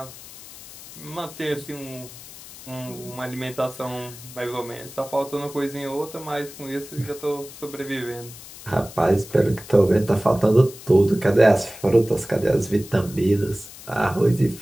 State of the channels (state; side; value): noise; left; hiss, 16 dB below the sound